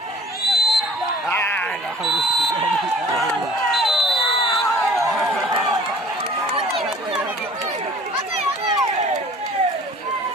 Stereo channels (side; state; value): both; normal; correlation 0.49